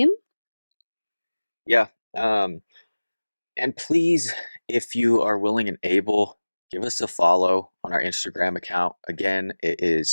Yeah. And please, if you are willing and able, give us a follow on our Instagram account. Again, it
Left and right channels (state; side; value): inverted; both; correlation -1.00